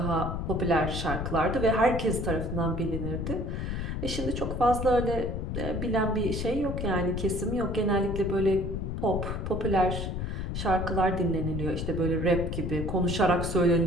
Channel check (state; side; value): noise; left; rumble, 3 dB below the sound